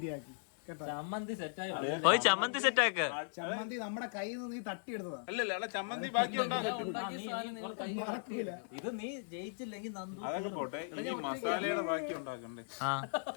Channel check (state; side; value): silent; right; digital silence